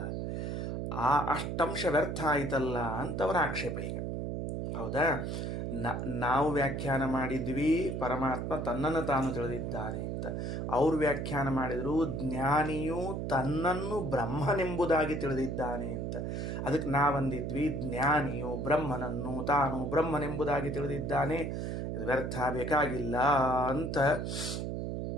ಆ ಅಷ್ಟಂಶ ವ್ಯರ್ಥ ಆಯ್ತಲ್ಲ ಅಂತ ಅವರ ಆಕ್ಷೇಪ. ಈಗ ಹೌದಾ, ನಾವು ವ್ಯಾಖ್ಯಾನ ಮಾಡಿದ್ವಿ ಪರಮಾತ್ಮ ತನ್ನನ್ನು ತಾನು ತಿಳಿದಿದ್ದಾನೆ ಅಂತ. ಅವರು ವ್ಯಾಖ್ಯಾನ ಮಾಡಿದರು ಜ್ಞಾನಿಯು ತನ್ನನ್ನು ಬ್ರಹ್ಮನೆಂಬುದಾಗಿ ತಿಳಿದಿದ್ದಾನೆ ಅಂತ. ಅದಕ್ಕೆ ನಾವಂದಿದ್ವಿ ಜ್ಞಾನಿಯು ಬ್ರಹ್ಮನನ್ನು ತಾನು ಬ್ರಹ್ಮನೆಂಬುದಾಗಿ ತಿಳಿದಿದ್ದಾನೆ, ಇದು ವ್ಯರ್ಥ, ಬೇಕಾಗಿಲ್ಲ ಅಂತ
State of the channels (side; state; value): right; noise; hum, 3 dB below the sound